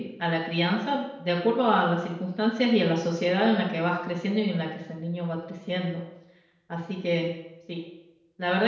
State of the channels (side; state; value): both; identical; correlation 1.00